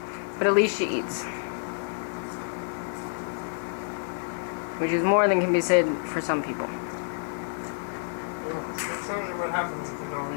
But at least she eats. Which is more than can be said for some people. That's only what happens if you don't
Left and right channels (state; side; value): silent; right; digital silence